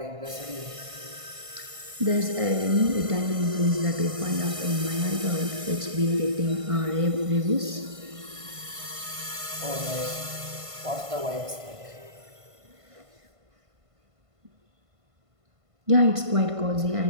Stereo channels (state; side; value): late; left; 1.5 ms